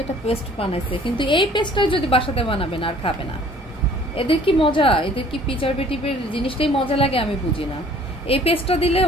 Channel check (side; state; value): both; normal; correlation 0.54